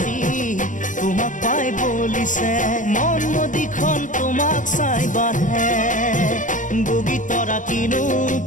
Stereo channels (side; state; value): right; late; 0.37 ms